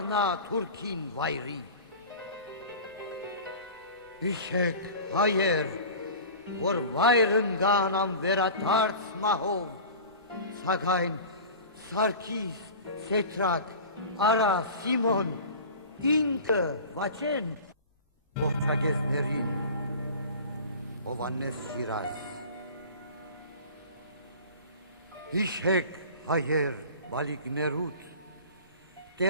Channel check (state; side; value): inverted; both; correlation -0.38